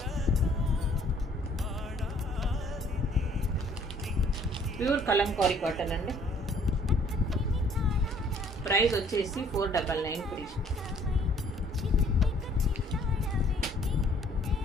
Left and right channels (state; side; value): normal; both; correlation 0.60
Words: pure Kalamkari cotton అండి. ప్రైస్ వచ్చేసి 499 ఫ్రీ.